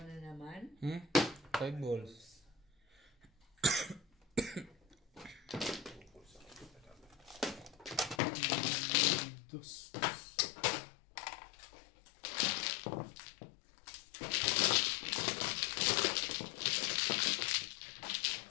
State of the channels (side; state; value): right; drops out; at 8.2 s